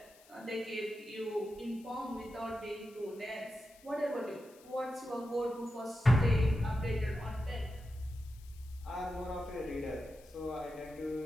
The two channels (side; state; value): left; noise; hiss, 25 dB below the sound